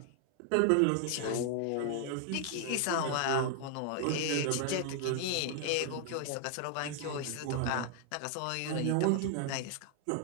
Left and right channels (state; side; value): different; both; correlation 0.00